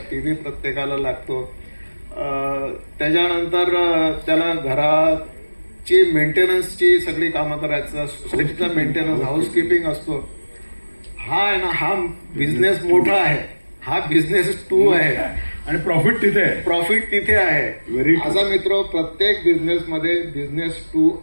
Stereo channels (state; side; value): inverted; both; correlation -1.00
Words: टीव्ही प्रत्येकाला लागतो. त्याच्यानंतर त्याला घराची मेंटेनन्सची सगळी कामं करायचं, सोसायटीचा मेंटेनन्स, हाऊसकीपिंग असतो. हा आहे ना, हा बिझनेस मोठा आहे, हा बिझनेस 2 आहे आणि प्रॉफिट तिथे आहे. प्रॉफिट तिथे आहे. Very true. माझा मित्र, प्रत्येक बिझनेसमध्ये बिझनेस 2